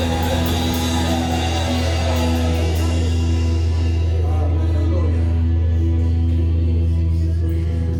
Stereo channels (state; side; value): identical; both; correlation 1.00